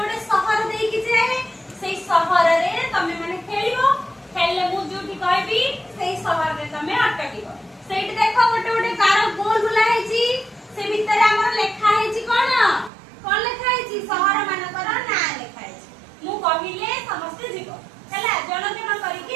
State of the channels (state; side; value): drops out; left; at 12.9 s